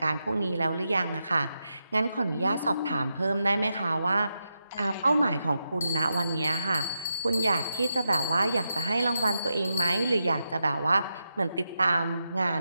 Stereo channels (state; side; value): inverted; both; correlation -0.86